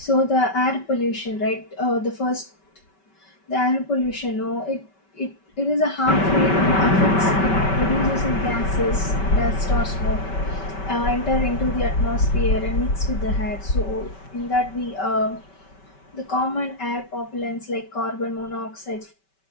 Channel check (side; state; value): right; late; 5.2 ms